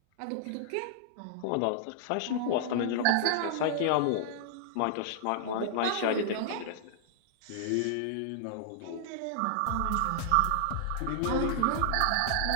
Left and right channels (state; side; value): different; both; correlation -0.01